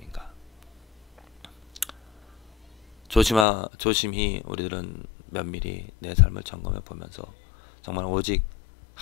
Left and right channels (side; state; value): right; drops out; at 3.5 s